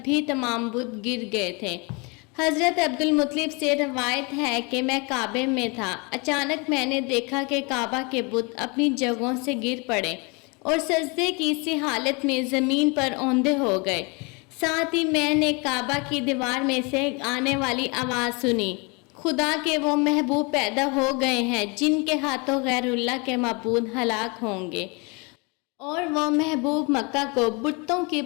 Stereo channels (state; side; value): quieter; right; 30.1 dB